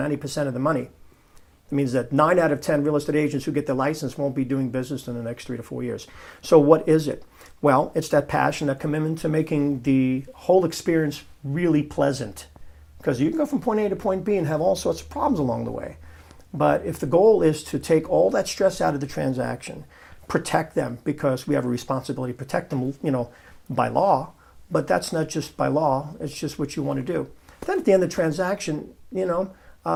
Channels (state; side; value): identical; both; correlation 1.00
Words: of the money. It means that 9 out of 10 real estate agents who get their license won't be doing business in the next 3 to 4 years. So what is it? Well, it's that passion, that commitment to making the whole experience really pleasant. Because you can go from point A to point B and have all sorts of problems along the way. But if the goal is to take all that stress out of the transaction, protect them, because we have a responsibility to protect them, by law, but that's not just by law, it's just what you want to do. Then at the end of the transaction, they're not